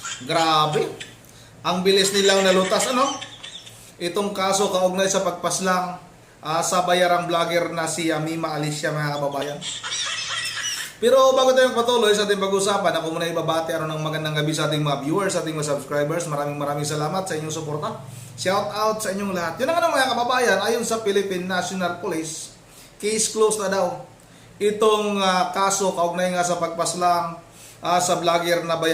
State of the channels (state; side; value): identical; both; correlation 1.00